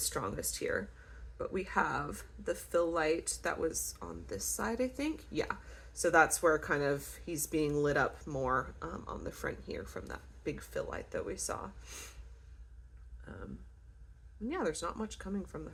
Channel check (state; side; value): identical; both; correlation 1.00